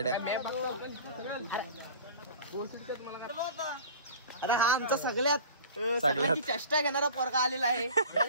अरे हा आमचा सगळ्यात चेष्टा घेणारा पोरगा आलेला आहे.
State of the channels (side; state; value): both; inverted; correlation -0.40